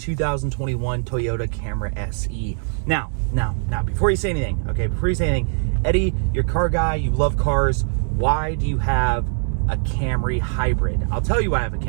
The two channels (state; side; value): silent; left; 58 dB below the other